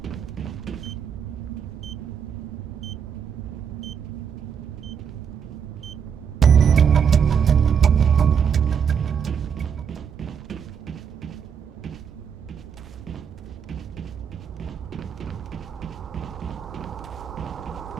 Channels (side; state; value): left; quieter; 7.4 dB